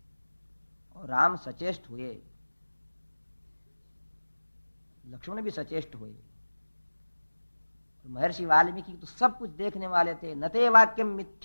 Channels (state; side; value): inverted; both; correlation -1.00